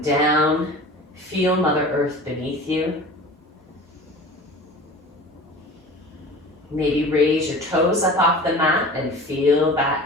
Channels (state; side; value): normal; both; correlation 0.39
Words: down. Feel Mother Earth beneath you. Maybe raise your toes up off the mat and feel that